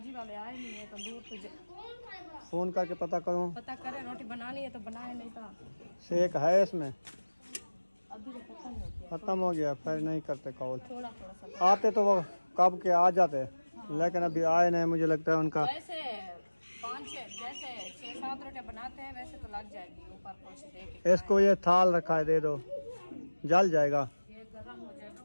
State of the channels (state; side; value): inverted; both; correlation -1.00